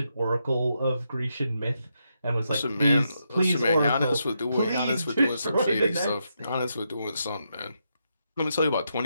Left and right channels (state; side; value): inverted; both; correlation -0.82